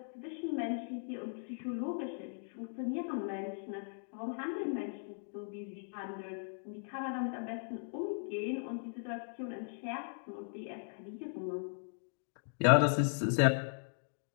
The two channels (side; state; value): right; silent; digital silence